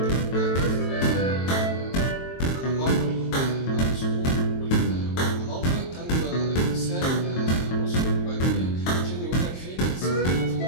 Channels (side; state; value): right; late; 23 ms